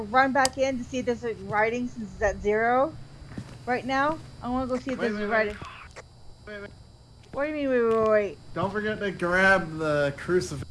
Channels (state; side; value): identical; both; correlation 1.00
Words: run back in to see if there's like writing since it's at 0 right now. I want to go see if there's writing. Wait. What do you mean? Wait. Don't forget to grab the